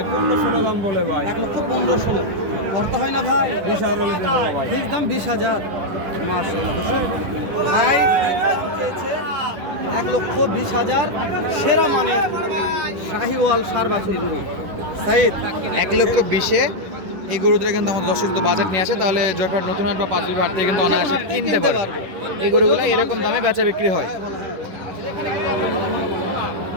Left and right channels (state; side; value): late; left; 11 ms